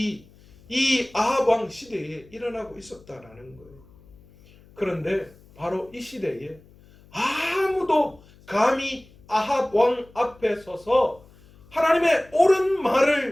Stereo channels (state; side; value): noise; left; hum, 26 dB below the sound